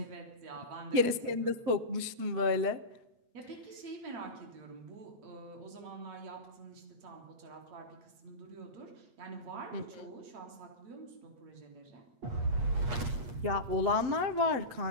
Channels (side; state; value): left; late; 7.8 ms